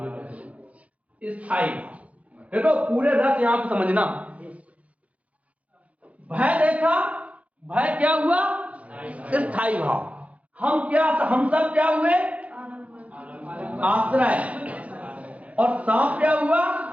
स्थायी। देखो पूरे रस यहां पर समझना। भय देखा, भय क्या हुआ? स्थायी भाव। हम सब क्या हुए? आश्रय। और सांप क्या हुआ?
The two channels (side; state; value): left; late; 0.066 ms